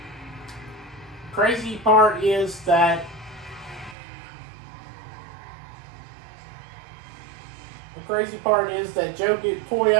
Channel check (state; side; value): drops out; left; at 4.0 s